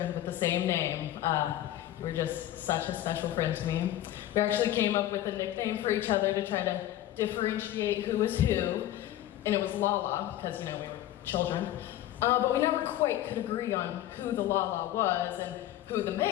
with the same name, you were just such a special friend to me. We actually came up with a nickname for each other to try to differentiate who was who, and it was Lala, because, we were children. But we never quite could agree on who the Lala was and who the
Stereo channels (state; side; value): quieter; right; 13.4 dB